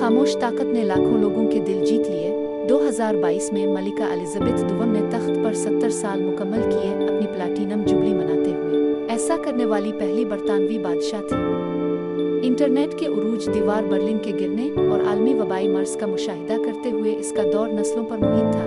ताकत ने लाखों लोगों के दिल जीत लिए। 2022 में मलिका एलिज़ाबेथ दुवम ने तख्त पर 70 साल मुकम्मल किए, अपनी प्लैटिनम जुबली मनाते हुए। ऐसा करने वाली पहली बरतानवी बादशाह थी। इंटरनेट के उरूज, दीवार बर्लिन के गिरने और आलमी वबाई मर्ज का मुशाहिदा करते हुए इसका दौर नस्लों पर मुहित था।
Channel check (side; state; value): both; identical; correlation 1.00